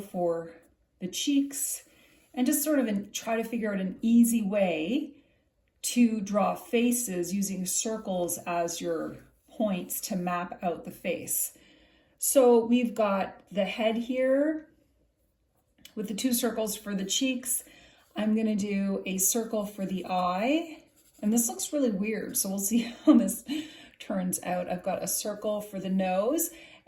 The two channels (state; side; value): identical; both; correlation 1.00